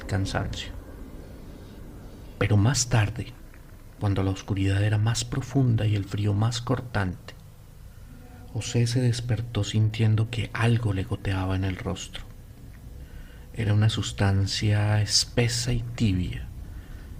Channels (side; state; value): both; identical; correlation 1.00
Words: cansancio. Pero más tarde, cuando la oscuridad era más profunda y el frío más cortante, José se despertó sintiendo que algo le goteaba en el rostro. Era una sustancia espesa y tibia,